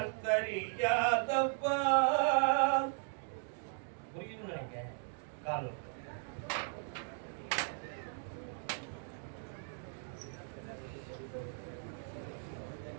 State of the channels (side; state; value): left; silent; 53 dB below the other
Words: சரியாதப்பா. புரியும் நினைக்க காலம்